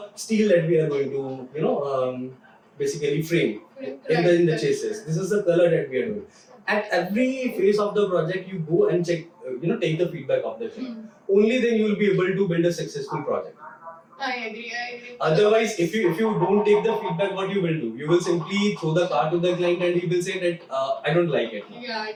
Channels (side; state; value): both; identical; correlation 1.00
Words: steel that we are going to basically frame in the chassis. This is the color that we are doing. At every phase of the project, you go and check, take the feedback of the client. Only then you will be able to build a successful project. I agree. Otherwise, if you don't take the feedback, what you will do? You will simply throw the car to the client and he will say that I don't like it. Yeah, I